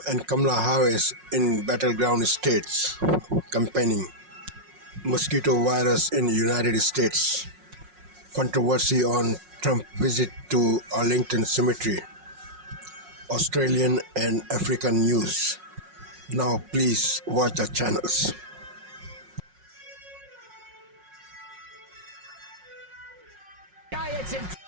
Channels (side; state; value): left; late; 5.5 ms